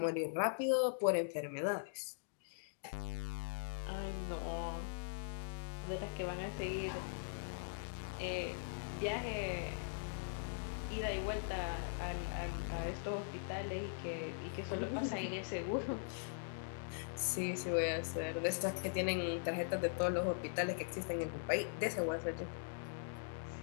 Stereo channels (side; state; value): right; silent; digital silence